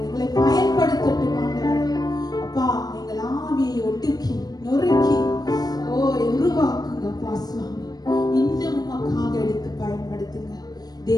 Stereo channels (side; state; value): right; late; 0.19 ms